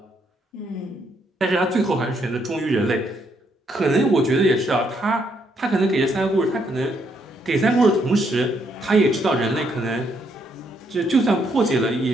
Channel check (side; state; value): both; normal; correlation 0.74